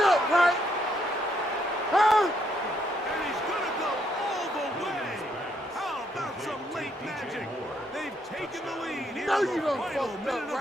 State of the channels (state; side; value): normal; both; correlation 0.73